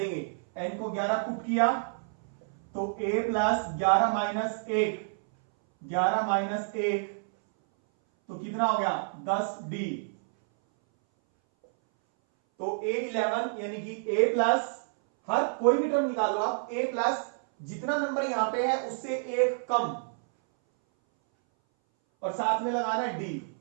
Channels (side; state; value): left; silent; 59 dB below the other